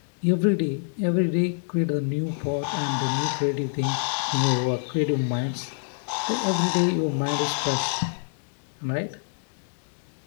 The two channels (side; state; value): right; silent; digital silence